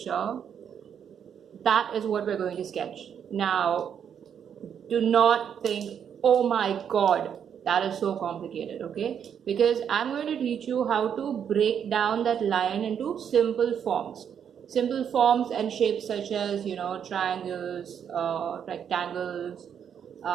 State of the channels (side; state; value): left; quieter; 8.2 dB